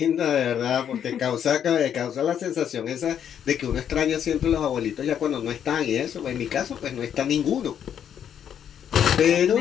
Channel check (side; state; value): right; quieter; 9.0 dB